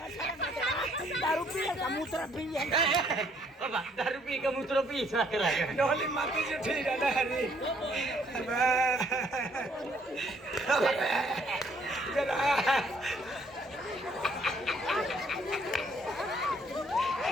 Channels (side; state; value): both; normal; correlation 0.66